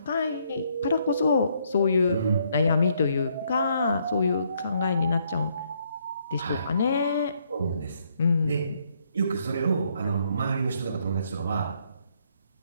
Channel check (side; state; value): both; inverted; correlation -0.71